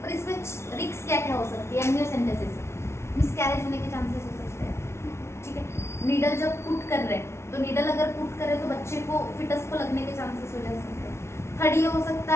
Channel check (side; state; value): right; late; 0.13 ms